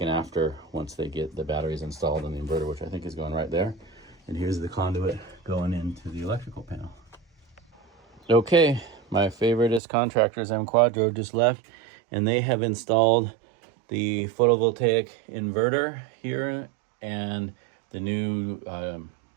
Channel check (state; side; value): drops out; left; at 9.8 s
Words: an after once they get the batteries installed and the inverter, which I think is going right there. And here's the conduit going into the electrical panel. Okay, my favoriteest contractors, M Quadro, just left, and they have installed the photovoltaic inverter here and the new